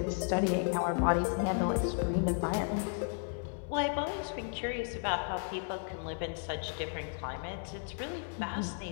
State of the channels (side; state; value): right; silent; 55 dB below the other